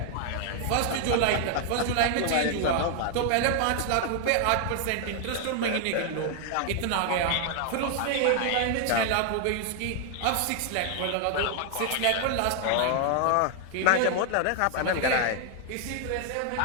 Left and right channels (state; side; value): different; both; correlation 0.00